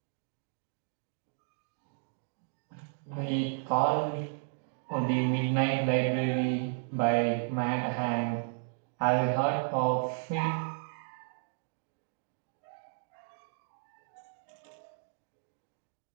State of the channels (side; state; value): left; silent; digital silence